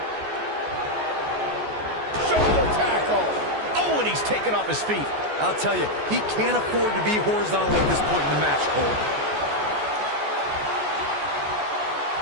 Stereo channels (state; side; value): late; left; 14 ms